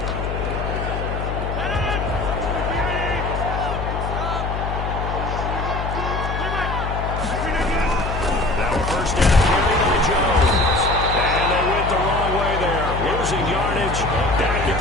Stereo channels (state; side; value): noise; left; hum, 4 dB below the sound